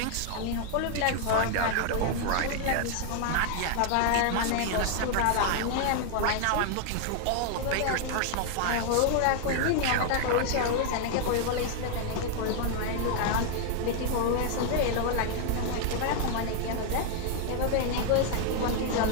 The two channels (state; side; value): different; both; correlation 0.00